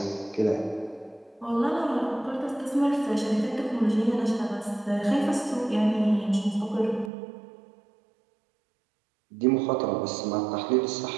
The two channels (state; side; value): drops out; left; at 7.1 s